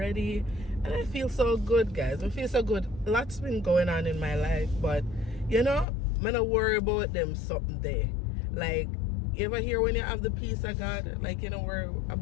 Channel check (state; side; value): drops out; right; at 5.9 s